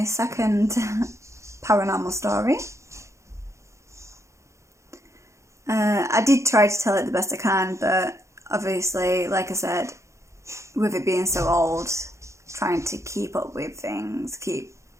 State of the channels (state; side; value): late; left; 0.14 ms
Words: second paranormal story. I did try to tell it the best I can, but obviously, like I said, with it being so old, trying to keep up with things, keep